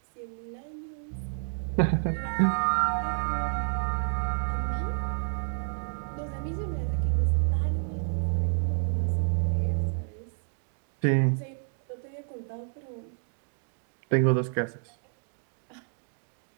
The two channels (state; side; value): silent; left; digital silence